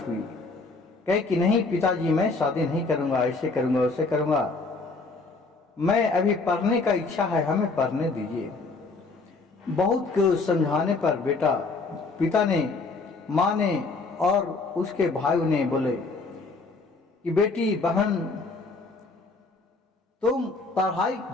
हुई। कहे कि नहीं पिताजी, मैं शादी नहीं करूँगा, ऐसे करूँगा, वैसे करूँगा। मैं अभी पढ़ने का इच्छा है, हमें पढ़ने दीजिए। बहुत को समझाने पर पिता ने, माँ ने और उसके भाइयों ने बोले कि बेटी बहन तुम पढ़ाई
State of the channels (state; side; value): quieter; right; 3.8 dB